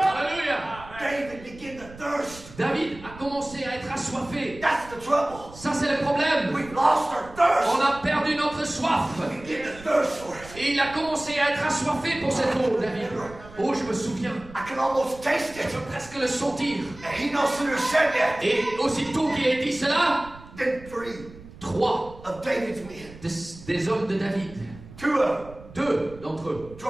David began to thirst. David a commencé à être assoiffé. That's the trouble. Ça, c'est le problème. We've lost our thirst. On a perdu notre soif. We begin to thirst for it. Et il a commencé à être assoiffé pour cette eau, David. Oh, je me souviens. I can almost taste it. Je peux presque le sentir. And he no sooner said that Et aussitôt qu'il a dit cela, than 3 3 of David's men, des hommes de David, 2 of them, 2 d'entre eux,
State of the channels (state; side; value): noise; right; rumble, 18 dB below the sound